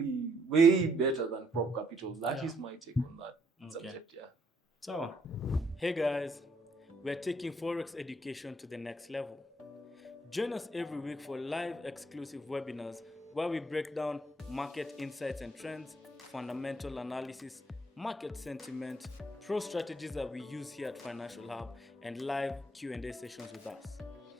way better than prop capital. That is my take on that subject, yeah. So, hey guys, we're taking Forex education to the next level. Join us every week for live exclusive webinars where we break down market insights and trends, fundamental analysis, market sentiment, pro strategies that we use here at Financial Hub, and live Q&A sessions with us.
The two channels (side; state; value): both; normal; correlation 0.70